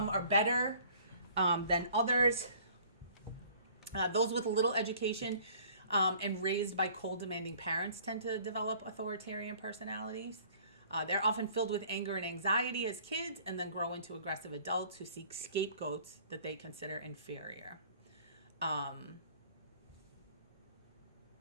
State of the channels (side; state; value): both; inverted; correlation -0.53